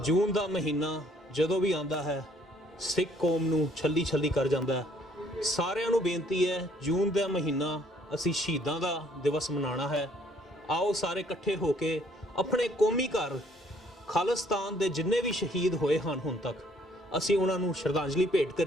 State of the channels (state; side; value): normal; both; correlation 0.63